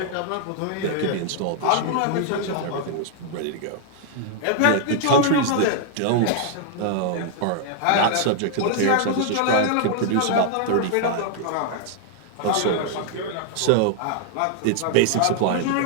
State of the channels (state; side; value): different; both; correlation 0.00